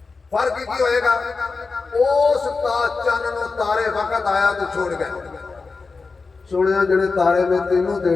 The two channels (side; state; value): right; quieter; 4.3 dB